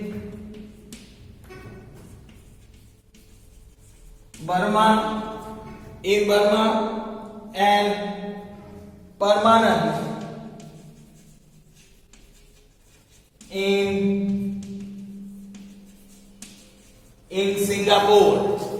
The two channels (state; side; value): identical; both; correlation 1.00